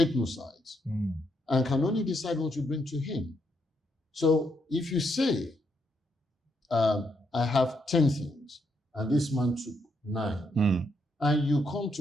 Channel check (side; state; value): both; normal; correlation 0.77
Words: no sides, and can only decide what you bring to him. So if you say, I have 10 things, and this man took 9, and you come